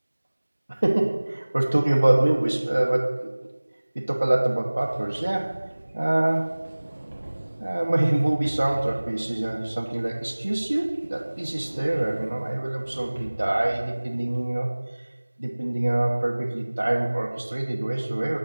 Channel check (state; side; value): inverted; both; correlation -1.00